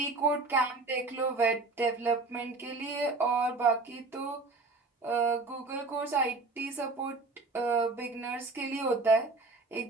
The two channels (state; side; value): quieter; left; 3.6 dB